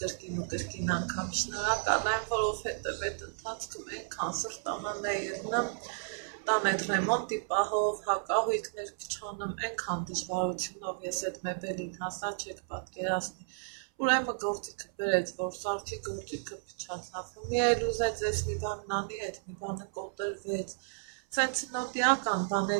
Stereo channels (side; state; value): left; silent; 56 dB below the other